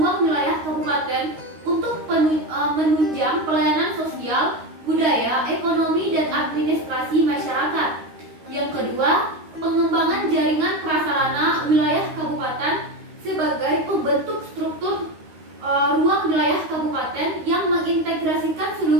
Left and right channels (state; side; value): late; left; 13 ms